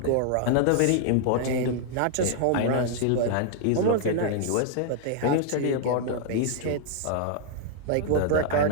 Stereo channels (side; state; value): both; different; correlation 0.00